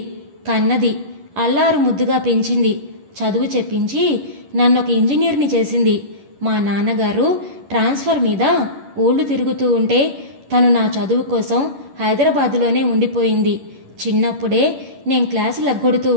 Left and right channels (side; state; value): left; late; 11 ms